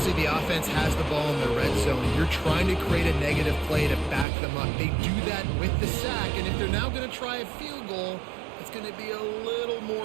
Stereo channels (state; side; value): drops out; left; at 4.2 s